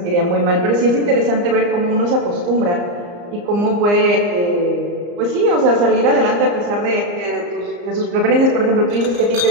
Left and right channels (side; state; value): left; late; 34 ms